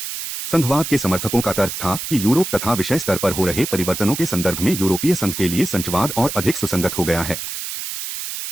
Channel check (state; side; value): noise; right; hiss, 6 dB below the sound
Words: संघवाद के समर्थकों का तर्क था कि यूरोप तथा विषय स्तर पर हो रहे परिवर्तनों के संदर्भ में यूरोपीय संघ के लिए संचवाद और अधिक सुसंगत हो गया है।